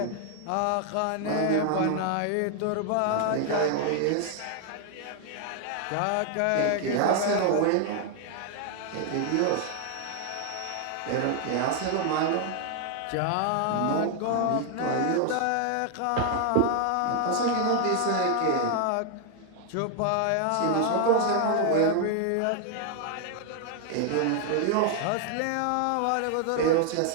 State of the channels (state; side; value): different; both; correlation 0.00